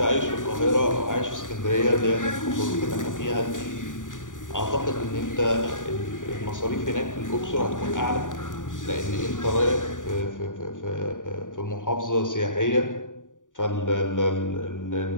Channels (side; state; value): right; late; 0.88 ms